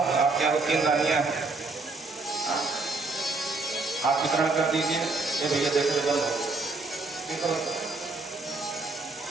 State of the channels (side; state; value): left; quieter; 3.5 dB